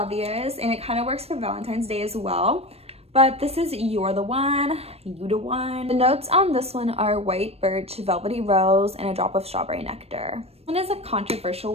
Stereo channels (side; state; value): left; late; 0.29 ms